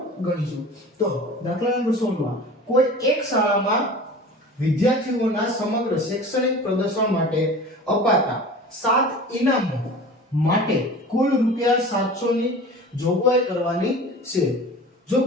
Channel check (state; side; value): normal; both; correlation 0.38